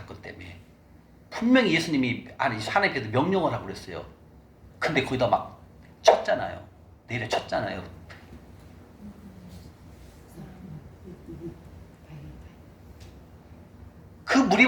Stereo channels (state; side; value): identical; both; correlation 1.00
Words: 때문에. 분명히 예수님이 하나님께서 명령을 하고 그랬어요. 근데 거기다 막 쳤잖아요. 내려 쳤잖아요. 그